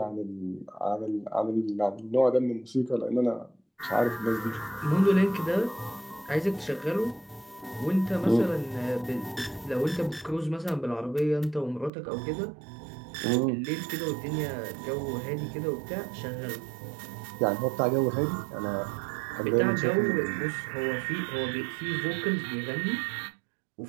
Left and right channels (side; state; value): left; drops out; at 11.9 s